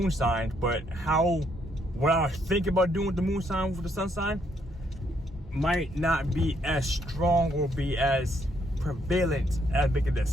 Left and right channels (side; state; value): both; normal; correlation 0.72